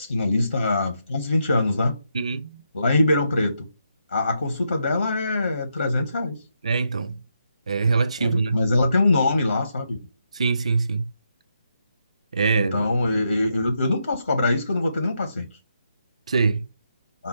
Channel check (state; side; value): inverted; both; correlation -0.81